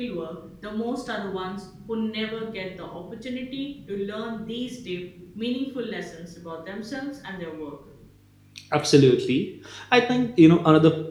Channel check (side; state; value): both; identical; correlation 1.00